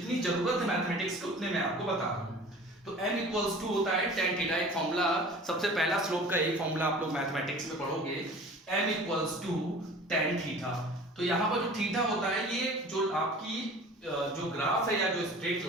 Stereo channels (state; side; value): normal; both; correlation 0.43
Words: जरूरत है मैथमेटिक्स की उतने मैं आपको बता रहा हूँ। तो m होता है tan थीटा। एक फॉर्मूला, सबसे पहला स्लोप का एक फॉर्मूला आप लोग मैथमेटिक्स में पढ़ोगे, m tan थीटा। तो यहाँ पर जो थीटा होता है, ये जो आपकी जो ग्राफ है या जो स्ट्रेट